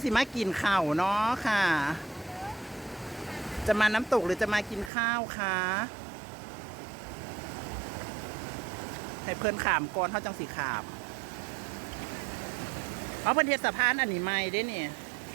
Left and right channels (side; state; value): left; drops out; at 4.9 s